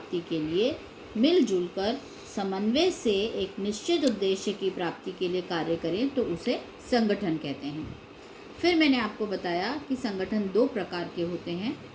के लिए मिलजुल कर समन्वय से एक निश्चित उद्देश्य की प्राप्ति के लिए कार्य करें तो उसे संगठन कहते हैं। फिर मैंने आपको बताया कि संगठन दो प्रकार के होते हैं,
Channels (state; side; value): identical; both; correlation 1.00